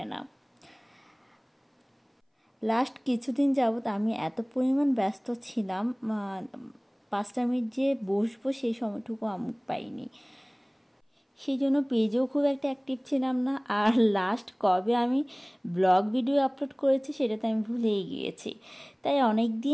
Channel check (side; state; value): both; identical; correlation 1.00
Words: না। লাস্ট কিছুদিন যাবৎ আমি এত পরিমাণ ব্যস্ত ছিলাম, 5টা মিনিট যে বসবো সেই সময়টুকু আমি পাইনি। সেই জন্য পেজেও খুব একটা অ্যাক্টিভ ছিলাম না। আর লাস্ট কবে আমি ব্লগ ভিডিও আপলোড করেছি সেটা তো আমি ভুলেই গিয়েছি। তাই অনেক